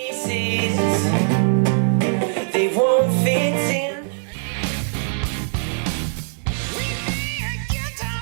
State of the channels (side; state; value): left; silent; digital silence